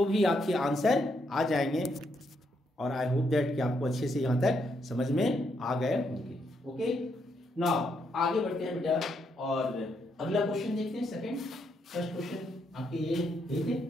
भी आपके आंसर आ जाएंगे। और आई होप दैट कि आपको अच्छे से यहाँ तक समझ में आ गए होंगे। ओके, नाउ आगे बढ़ते हैं बेटा, और अगला क्वेश्चन देखते हैं। सेकंड, फर्स्ट क्वेश्चन आपके ये थे,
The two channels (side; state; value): both; normal; correlation 0.77